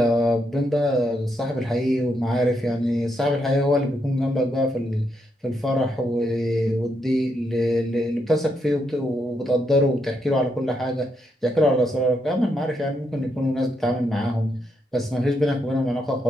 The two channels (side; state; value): both; normal; correlation 0.79